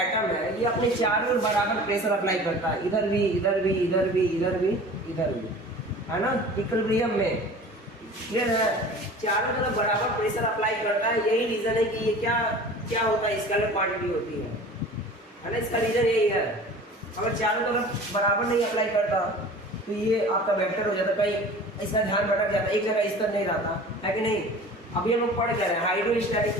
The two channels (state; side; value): normal; both; correlation 0.41